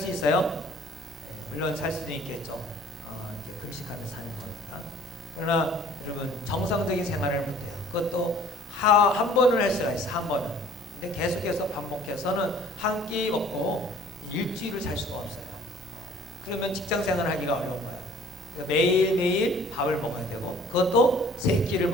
있어요? 물론 살 수도 있겠죠. 이렇게 금식하면서 사는 거니까. 그러나 여러분, 정상적인 생활을 못해요. 그것도 한 번을 할 수가 있어, 한 번은. 근데 계속해서 반복해서는 한 끼 먹고 일주일을 살 수가 없어요. 그러면 직장 생활을 하기가 어려운 거예요. 그러니까 매일매일 밥을 먹어야 되고, 그것도 세 끼를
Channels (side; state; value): both; normal; correlation 0.53